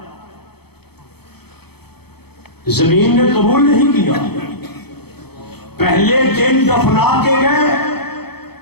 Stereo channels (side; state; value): right; late; 0.97 ms